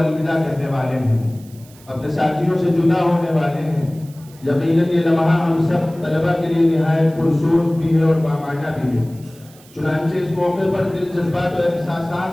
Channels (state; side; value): noise; right; hiss, 25 dB below the sound